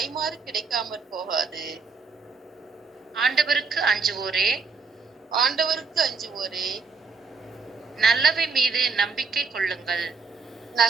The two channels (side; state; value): left; quieter; 4.7 dB